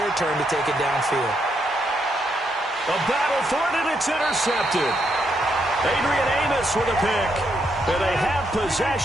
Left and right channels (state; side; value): normal; both; correlation 0.78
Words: turn to take it downfield. A battle for it, and it's intercepted. Adrian Amos with a pick. And they have